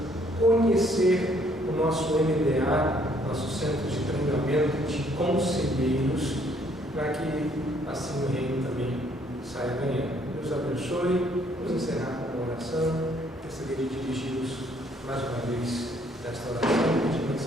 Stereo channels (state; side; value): normal; both; correlation 0.65